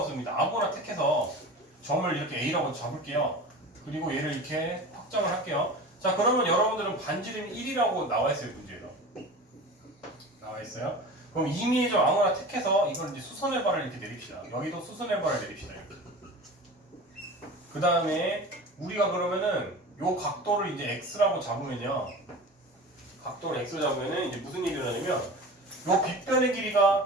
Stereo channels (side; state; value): both; normal; correlation 0.34